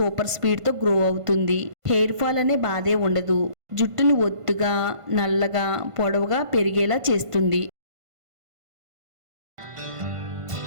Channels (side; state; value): left; late; 1.5 ms